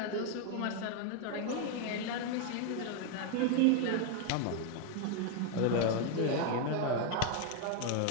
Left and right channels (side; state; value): both; different; correlation 0.01